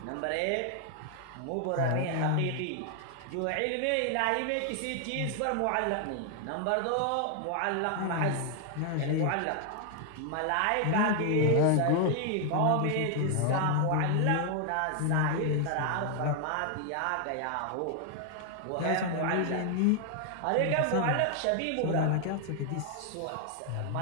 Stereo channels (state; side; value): different; both; correlation 0.00